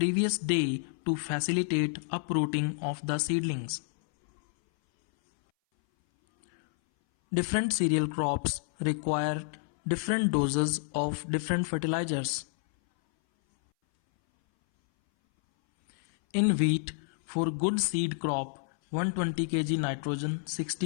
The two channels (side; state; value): right; silent; 58 dB below the other